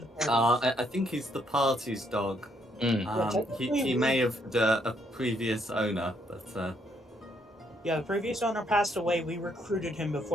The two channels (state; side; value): normal; both; correlation 0.72